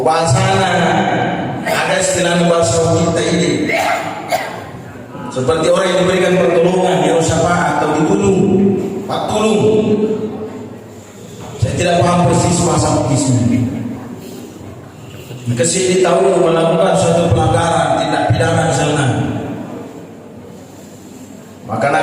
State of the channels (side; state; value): both; identical; correlation 1.00